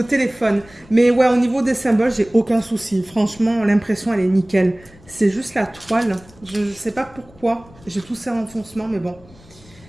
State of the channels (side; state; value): left; noise; rumble, 25 dB below the sound